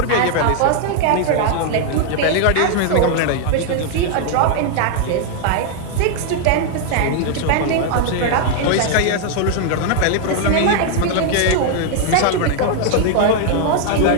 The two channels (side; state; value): both; different; correlation 0.00